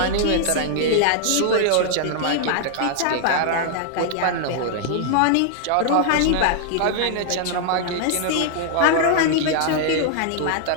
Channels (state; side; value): different; both; correlation 0.00